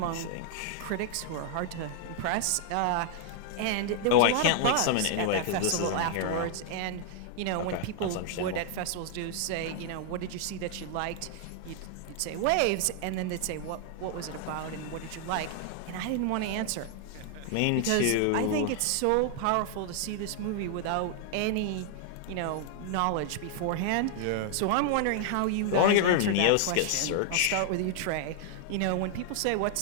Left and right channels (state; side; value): different; both; correlation 0.00